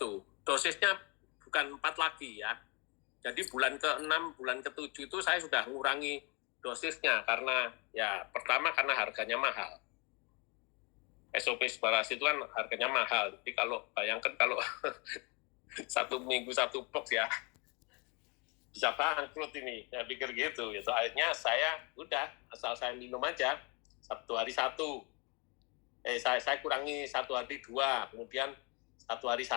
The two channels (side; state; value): right; quieter; 31.0 dB